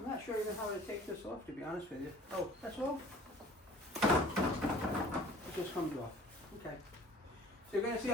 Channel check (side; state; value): both; normal; correlation 0.49